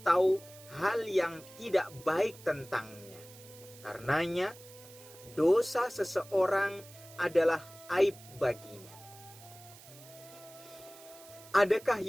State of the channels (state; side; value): noise; right; hiss, 20 dB below the sound